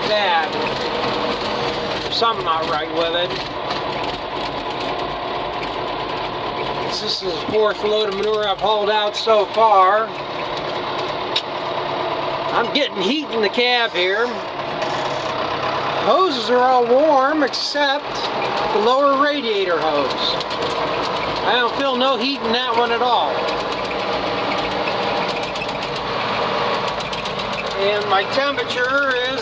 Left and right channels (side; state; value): both; identical; correlation 1.00